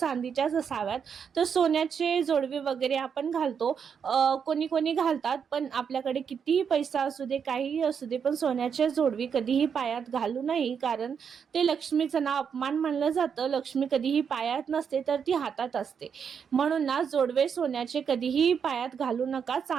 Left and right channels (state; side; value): quieter; left; 7.0 dB